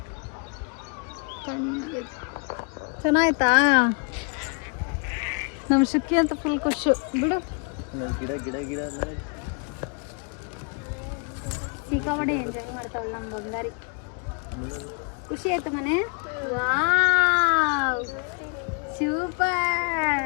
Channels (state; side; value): quieter; right; 36.4 dB